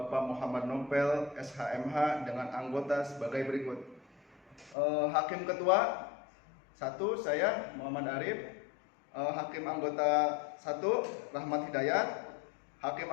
Muhammad Nopel, SHMH dengan anggota sebagai berikut. Hakim Ketua 1 saya Muhammad Arif, Hakim Anggota 1 Rahmat Hidayat, Hakim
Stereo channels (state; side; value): drops out; right; at 4.8 s